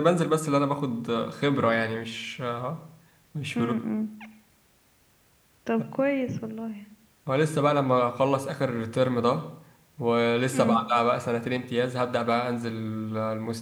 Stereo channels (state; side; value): identical; both; correlation 1.00